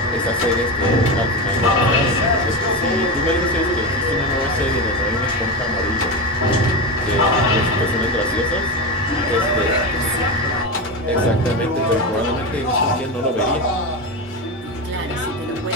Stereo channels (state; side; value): normal; both; correlation 0.19